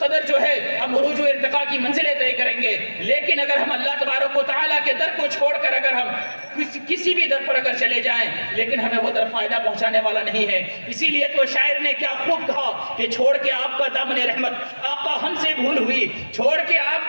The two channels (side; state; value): both; inverted; correlation -1.00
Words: جو ہے ہم عروج و ارتقاء کی منزلیں طے کریں گے۔ لیکن اگر ہم اللہ تبارک و تعالیٰ کے در کو چھوڑ کر اگر ہم کسی بھی در پر اگر چلے جائیں، لیکن ہمیں وہ در فائدہ پہنچانے والا نہیں ہے۔ اسی لیے تو شاعر نے کیا خوب کہا کہ چھوڑ کے آپ کا دامن رحمت آقا ہم سے بھول ہوئی، چھوڑ کے آپ